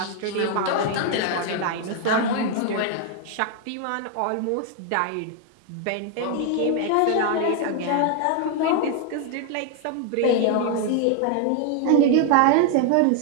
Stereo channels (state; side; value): different; both; correlation 0.00